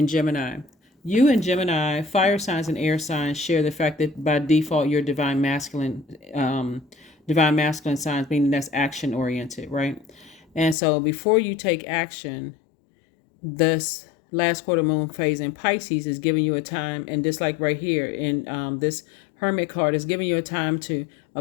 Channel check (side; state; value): right; drops out; at 10.8 s